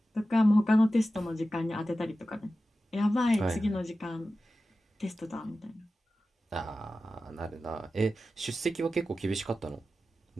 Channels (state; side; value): normal; both; correlation 0.94